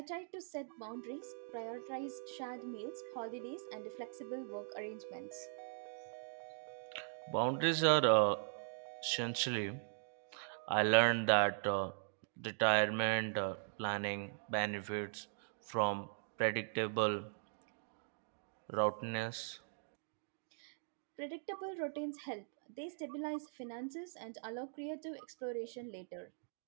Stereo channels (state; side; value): silent; left; digital silence